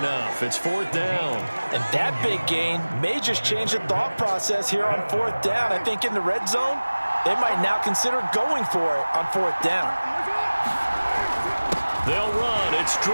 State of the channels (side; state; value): both; inverted; correlation -1.00